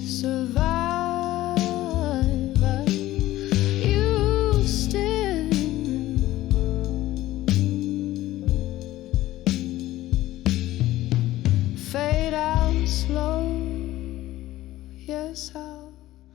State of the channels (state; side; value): quieter; right; 15.6 dB